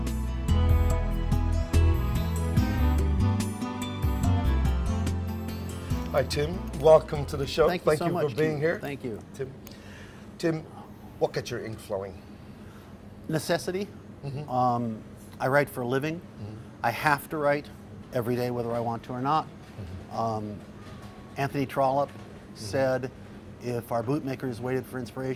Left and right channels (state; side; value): identical; both; correlation 1.00